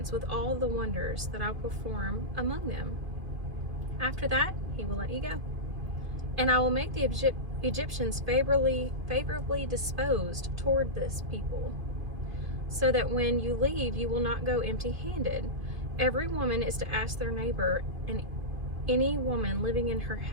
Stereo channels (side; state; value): left; late; 2.5 ms